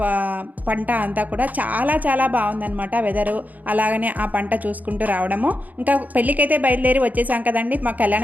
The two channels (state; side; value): late; left; 0.080 ms